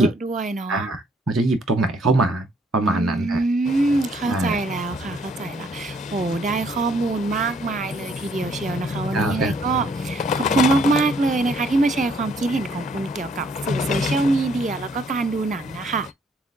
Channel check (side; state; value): both; normal; correlation 0.66